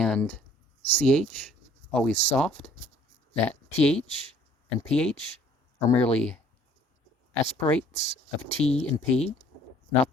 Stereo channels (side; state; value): both; normal; correlation 0.57